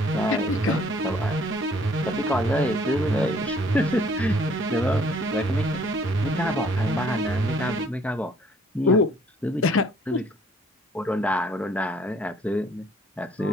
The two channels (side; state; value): both; normal; correlation 0.60